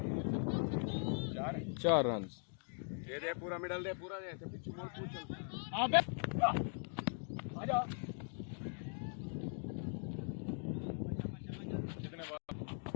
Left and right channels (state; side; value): silent; right; 51 dB below the other